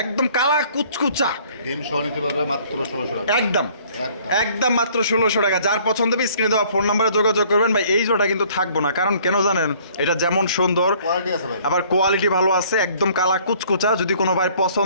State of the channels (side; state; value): both; inverted; correlation -0.57